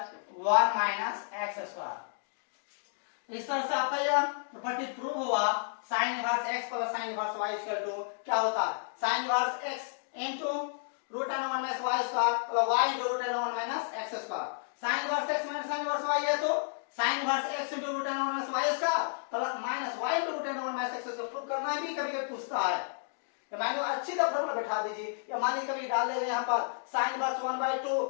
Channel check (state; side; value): silent; right; digital silence